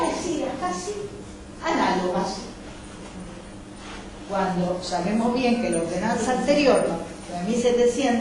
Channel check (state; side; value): identical; both; correlation 1.00